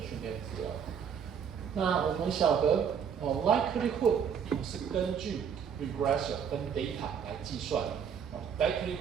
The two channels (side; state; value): left; quieter; 7.5 dB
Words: 训练资料。那我们晓得likelihood 是根据 regressor 跟 data 来计算的